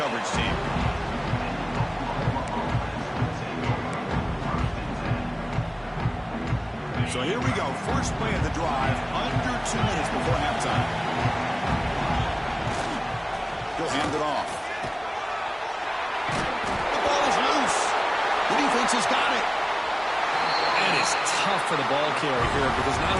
team. So here we go. First play of the drive, under 2 minutes before halftime. He'll hand it off. The ball is loose. The defense has got it. That is tough for the ball carrier here because not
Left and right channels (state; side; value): identical; both; correlation 1.00